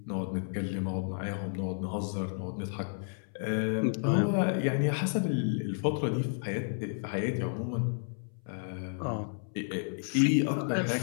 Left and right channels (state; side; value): silent; right; 57 dB below the other